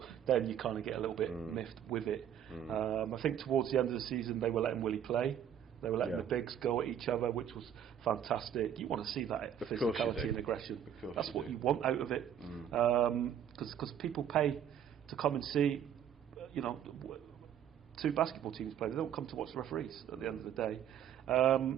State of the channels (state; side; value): quieter; left; 9.4 dB